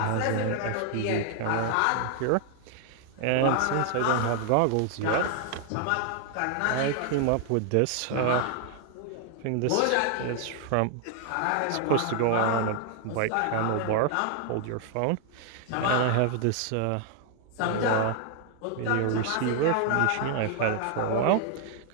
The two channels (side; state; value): both; different; correlation 0.00